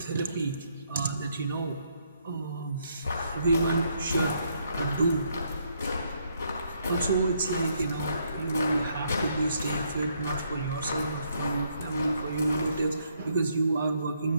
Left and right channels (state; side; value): inverted; both; correlation -0.73